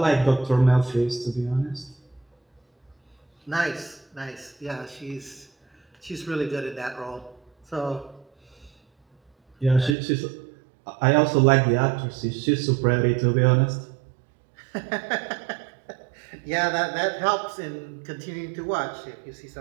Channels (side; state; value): left; drops out; at 10.0 s